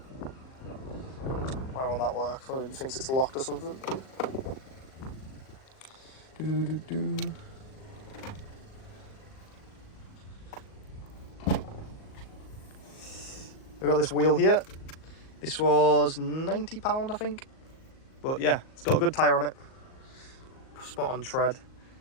why won't that work? Maybe he thinks it's locked or something. We've got this wheel here. This was £90, I think. But yeah, it's got a good tyre on it. Spot on tread.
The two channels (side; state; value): right; late; 38 ms